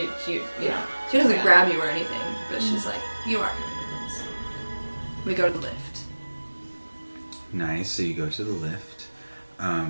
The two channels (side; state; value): both; inverted; correlation -1.00